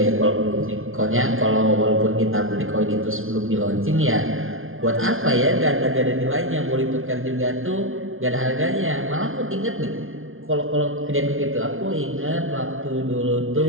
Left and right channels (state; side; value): late; left; 0.60 ms